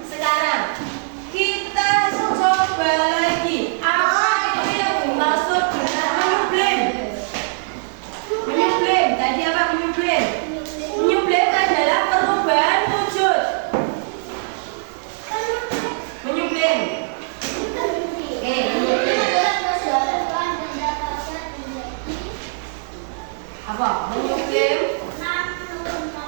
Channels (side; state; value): left; silent; 57 dB below the other